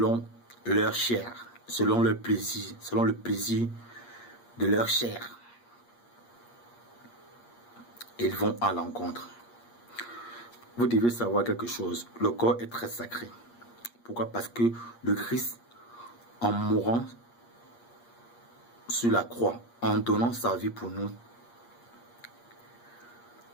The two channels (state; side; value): late; right; 8.5 ms